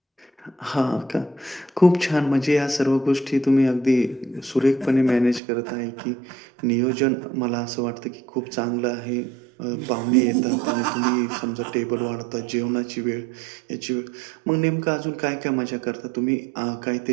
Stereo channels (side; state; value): left; drops out; at 5.4 s